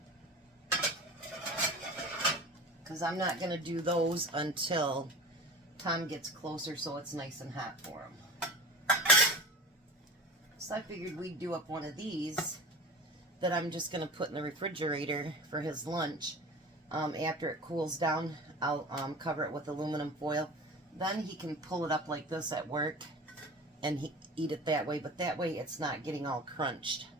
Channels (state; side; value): normal; both; correlation 0.35